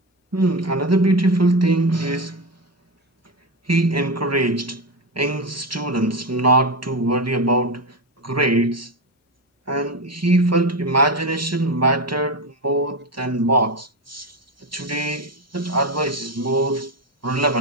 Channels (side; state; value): both; normal; correlation 0.17